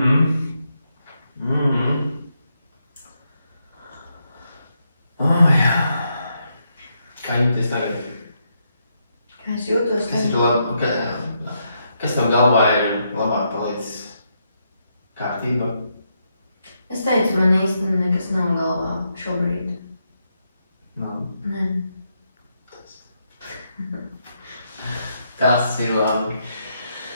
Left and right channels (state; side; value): inverted; both; correlation -0.80